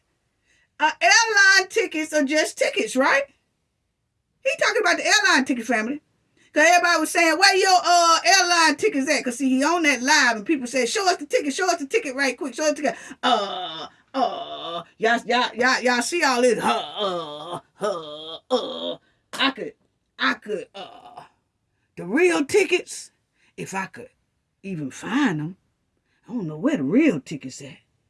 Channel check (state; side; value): identical; both; correlation 1.00